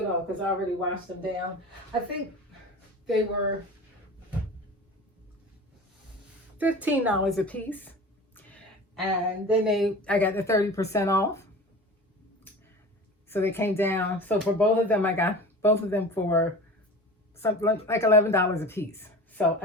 off because I already washed them down. I think they were $15 a piece. And then I got the 30% off. So they came down. So for both of them, I got both of them for something like $11 a piece. So,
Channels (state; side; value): normal; both; correlation 0.36